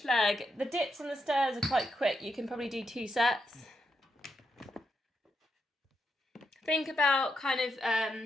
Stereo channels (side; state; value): both; normal; correlation 0.82